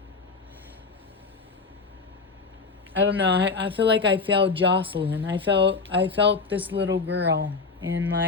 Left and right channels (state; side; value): quieter; right; 4.5 dB